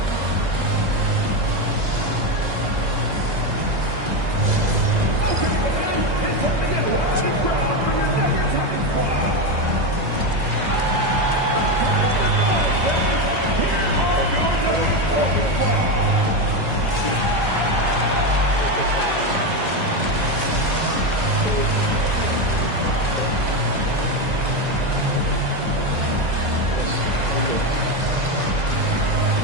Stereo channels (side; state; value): left; late; 2.0 ms